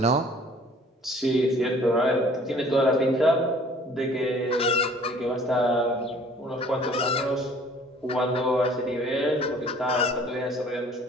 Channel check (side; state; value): both; normal; correlation 0.53